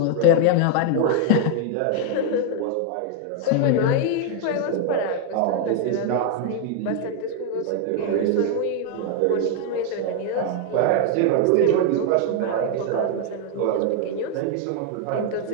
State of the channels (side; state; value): both; different; correlation 0.01